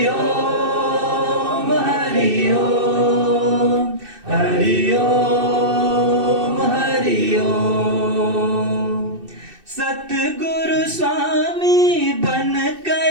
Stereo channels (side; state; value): left; late; 2.6 ms